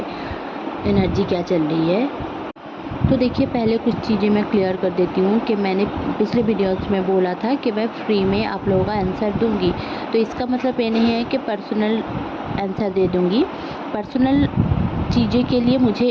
एनर्जी क्या चल रही है। तो देखिए, पहले कुछ चीज़ें मैं क्लियर कर देती हूँ कि मैंने पिछले वीडियोस में बोला था कि मैं फ्री में आप लोगों का आंसर दूंगी। तो इसका मतलब ये नहीं है कि पर्सनल आंसर दे दूंगी। पर्सनल चीज़ें के लिए मुझे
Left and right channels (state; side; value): identical; both; correlation 1.00